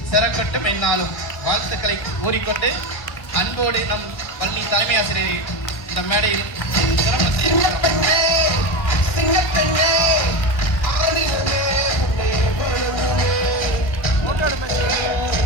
சிறக்கட்டும் என்னாலும் வாழ்த்துக்களை கூறிக்கொண்டு அன்போடு நம் பள்ளி தலைமை ஆசிரியரை இந்த மேடையில்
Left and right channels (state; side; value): late; right; 1.1 ms